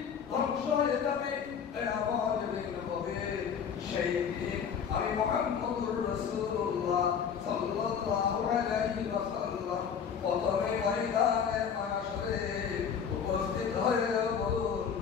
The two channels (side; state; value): right; quieter; 7.2 dB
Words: ধ্বংস হয়ে যাবে, আমার যেদিন হবে সেই দিন আমি মুহাম্মদুর রাসূলুল্লাহ সাল্লাল্লাহু আলাইহি ওয়াসাল্লাম প্রথমে ময়দানে মাশরে উপস্থিত হয়ে বলুন